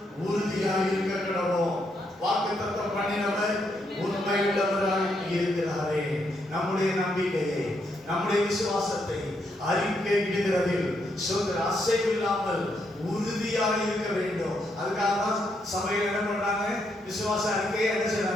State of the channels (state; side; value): normal; both; correlation 0.78